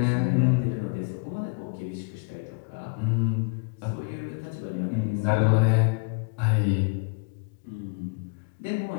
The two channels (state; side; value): quieter; right; 35.8 dB